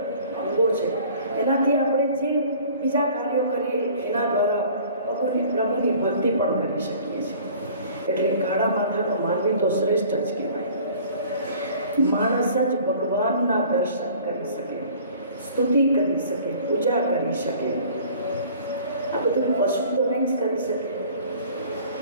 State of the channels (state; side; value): inverted; both; correlation -0.49